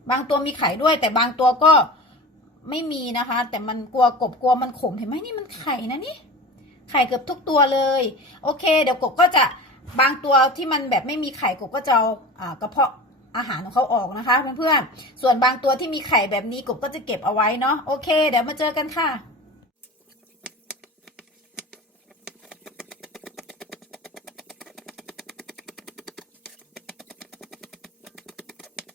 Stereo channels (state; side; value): normal; both; correlation 0.33